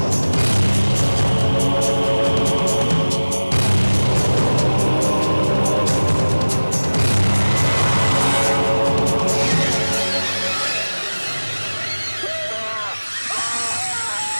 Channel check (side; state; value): both; inverted; correlation -1.00